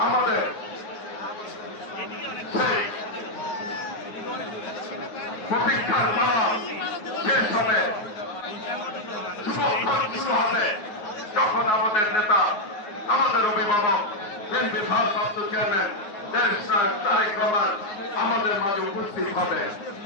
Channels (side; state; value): right; late; 9.4 ms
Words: আমাদের সেই প্রতীক্ষার নাম শেষ হবে, শুরু হবে যখন আমাদের নেতা, আমাদের অভিভাবক, বিএনপি ভারপ্রাপ্ত চেয়ারম্যান দেশ নায়ক তারেক রহমান আমাদের মাঝে উপস্থিত হবে।